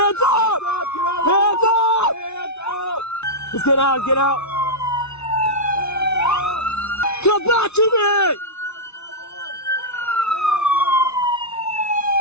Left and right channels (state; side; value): late; right; 0.81 ms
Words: up! Hands up! Hands up! Just get out, get out! Come back to me!